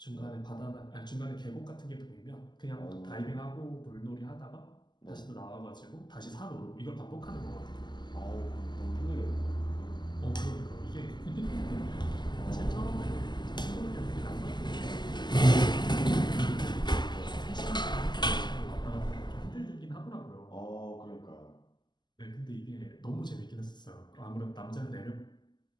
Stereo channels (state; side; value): late; right; 0.21 ms